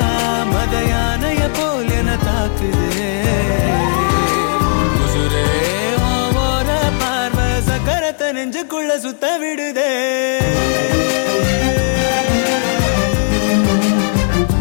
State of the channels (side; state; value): right; silent; digital silence